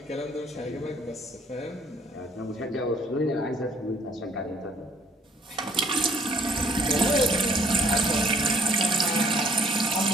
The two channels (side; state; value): both; normal; correlation 0.61